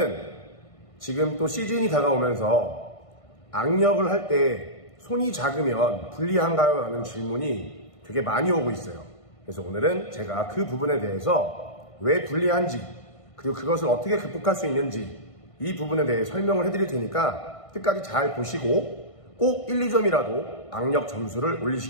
지금 또 시즌이 다가오면서 악력을 할 때 손이 작으면 불리한가요? 라는 질문이 되게 많이 오고 있어요. 그래서 오늘은 제가 그 부분에 대해서 왜 불리한지, 그리고 그것을 어떻게 극복할 수 있는지 이 부분에 대해 설명을 해드릴 테니까 끝까지 잘 보시고 꼭 1, 2점이라도 악력 점수를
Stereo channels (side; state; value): right; late; 1.5 ms